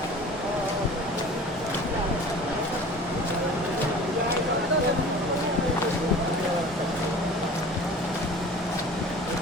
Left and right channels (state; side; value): normal; both; correlation 0.42